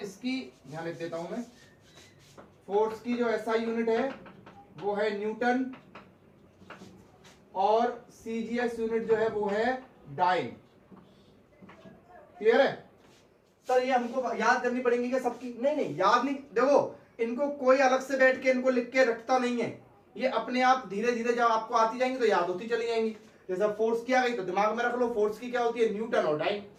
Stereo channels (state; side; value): identical; both; correlation 1.00